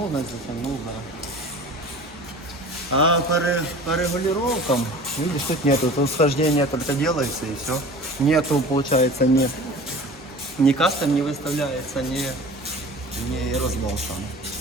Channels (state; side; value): normal; both; correlation 0.40